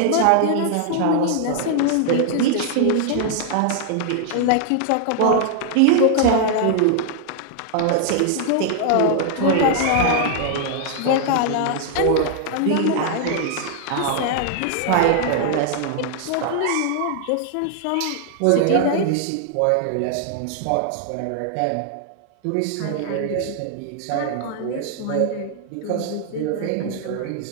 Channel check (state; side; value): different; both; correlation 0.00